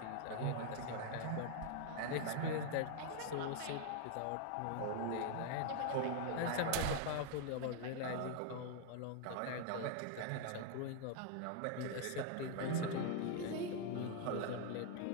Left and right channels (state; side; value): different; both; correlation 0.00